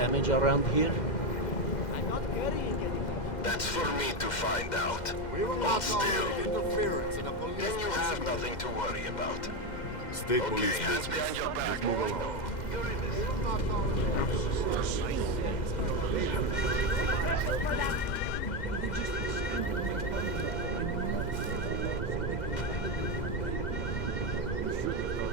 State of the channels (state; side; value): late; right; 2.1 ms